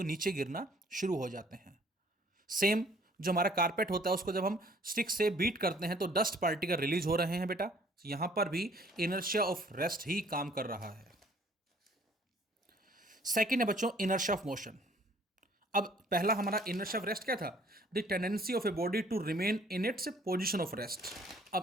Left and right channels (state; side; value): normal; both; correlation 0.58